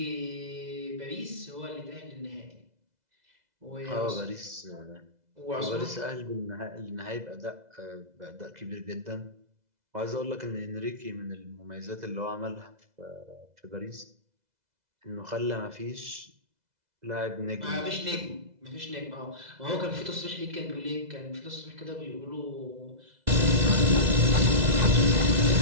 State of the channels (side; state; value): left; late; 2.0 ms